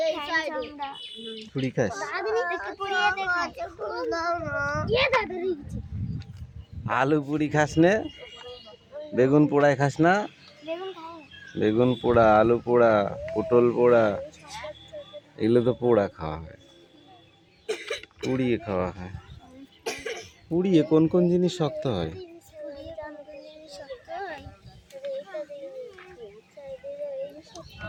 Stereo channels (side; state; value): both; identical; correlation 1.00